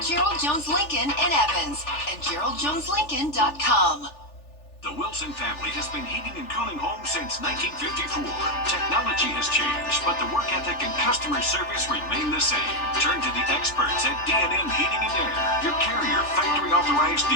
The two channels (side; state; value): right; late; 3.4 ms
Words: Gerald Jones Lincoln in Evans and GeraldJonesLincoln.com. The Wilson family has been heating and cooling homes since 1954. Technology has changed, but the work ethic and customer service remain the same. Turn to the experts at D&M Heating and Air, your Carrier factory authorized